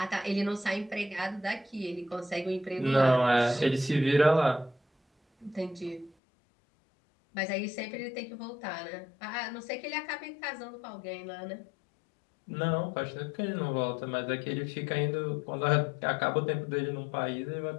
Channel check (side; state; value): right; drops out; at 6.1 s